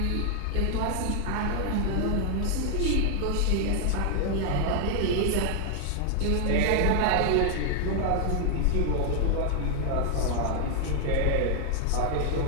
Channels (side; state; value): both; different; correlation 0.00